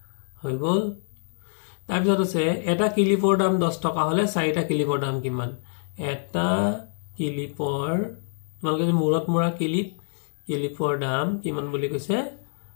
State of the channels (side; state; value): right; silent; digital silence